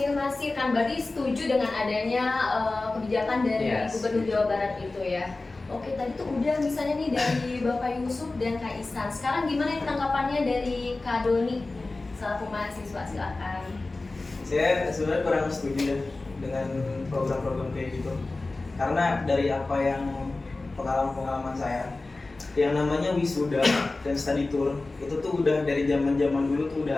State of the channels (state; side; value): quieter; right; 3.3 dB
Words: kan, berarti setuju dengan adanya kebijakan dari Gubernur Jawa Barat itu ya. Oke, tadi tuh udah misalnya nih dari Bapak Yusuf dan Kak Isan. Sekarang gimana tanggapannya dari Kak Doni selaku mahasiswa, silakan. Saya sebenarnya kurang setuju ya dengan program-program kayak gitu. Karena dari apa yang pengalaman saya, yang namanya wisuda dan study tour itu tuh udah dari zaman-zaman dulu tuh